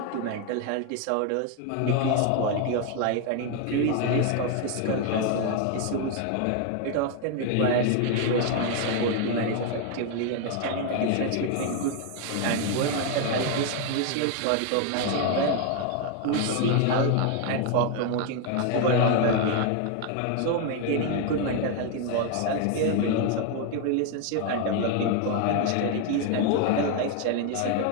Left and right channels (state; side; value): different; both; correlation 0.01